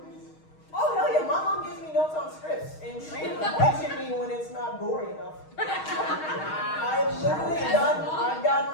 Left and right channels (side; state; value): right; late; 6.4 ms